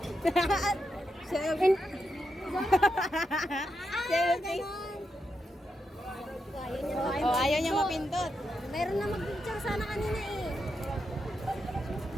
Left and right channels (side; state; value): both; normal; correlation 0.85